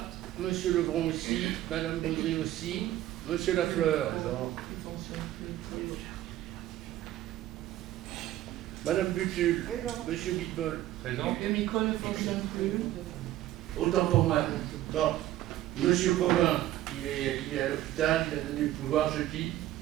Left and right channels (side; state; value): left; quieter; 14.1 dB